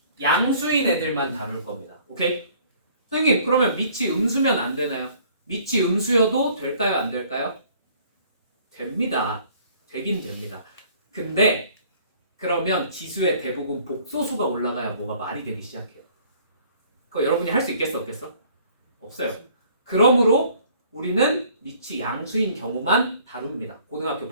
양수인 애들만 다룰 겁니다. 오케이? 선생님, 그러면 밑이 음수면 안 되나요? 밑이 음수여도 될까요? 안 될까요? 됩니다. 되긴 됩니다. 근데 그러면 지수의 대부분 복소수가 올라가야 뭐가 말이 되기 시작해요. 그거 여러분이 할 수 있겠어? 없겠어? 없어요. 그러므로 우리는 밑이 양수인 경우만 다룹니다. 고등학교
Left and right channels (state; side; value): inverted; both; correlation -0.56